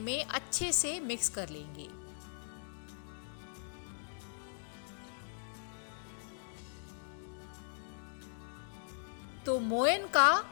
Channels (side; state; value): right; silent; digital silence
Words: अच्छे से मिक्स कर लेंगे। तो मोयन का